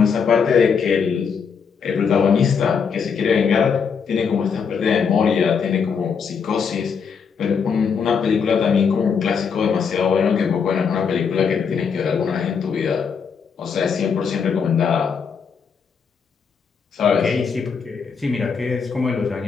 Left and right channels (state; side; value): quieter; right; 6.2 dB